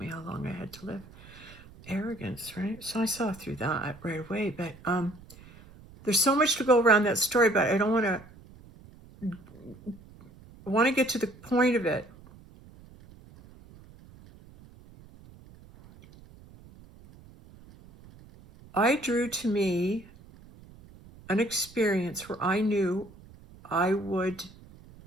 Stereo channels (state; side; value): noise; right; rumble, 22 dB below the sound